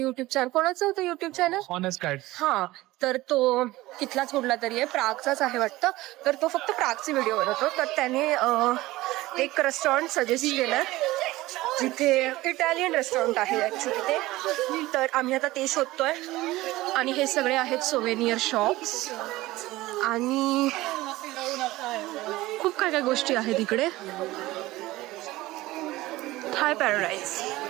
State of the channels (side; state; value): left; quieter; 18.1 dB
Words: युट्यूब चॅनल, ऑनेस्ट गाईड. तर तो तिथलाच कुठला तरी आहे, प्रागचाच आहे वाटतं. तर तो फक्त प्रागचे व्हिडिओ बनवतो, तर त्याने एक रेस्टॉरंट सजेस्ट केलं जिथे इटालियन रेस्टॉरंट आहे ॲक्च्युली ते. तर आम्ही आता ते शोधतोय. आणि हे सगळे आहेत सोवेनियर शॉप्स आणि खूप काय गोष्टी आहेत इकडे. थाय पॅराडाईज